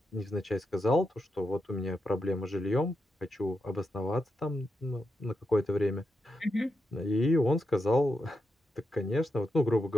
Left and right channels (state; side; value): normal; both; correlation 0.86